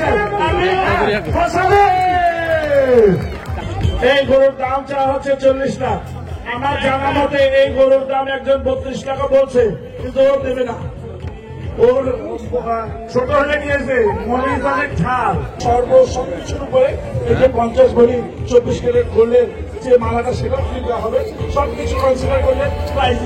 এই গরুর দাম চাওয়া হচ্ছে 40 লাখ। আমার জানা মতে এই গরুর দাম একজন 32 টাকা বলছে, কিন্তু ও দেবে না। ওর ছোট হয়ে গিয়েছে, মরিচ অনেক ঝাল, সবকিছুর উপরে এই যে 50 ভরি 24 ক্যারেট গোল্ডের যে মালাটা সেটা ফ্রি দেওয়া হবে। সবকিছু কনসিডার করলে প্রাইস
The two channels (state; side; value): identical; both; correlation 1.00